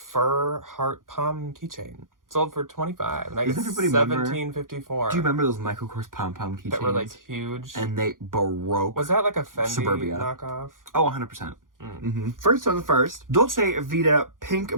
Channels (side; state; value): left; late; 0.90 ms